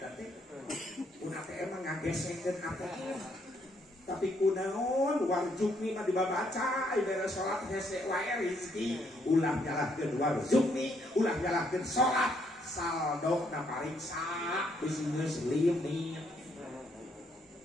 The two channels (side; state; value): both; normal; correlation 0.71